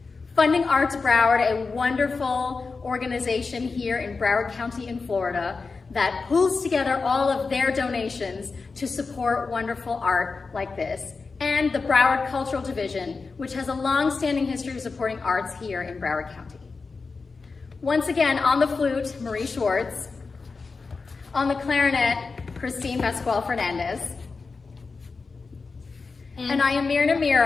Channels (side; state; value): right; quieter; 4.4 dB